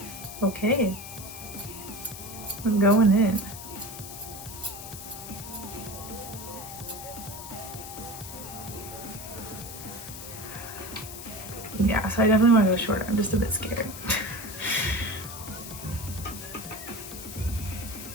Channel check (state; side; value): noise; left; hiss, 11 dB below the sound